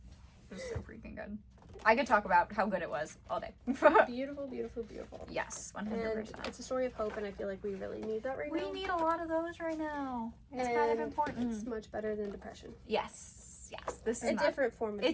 It was so freaking good. I could talk about how good it was all day. Beautiful, beautiful, beautiful. Yes, 100%. And it's a story of hope, and I feel like we really need that right now. We need a lot of those right now. It's kind of important. It's much better than depression. Yes. This is a different form of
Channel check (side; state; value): both; identical; correlation 1.00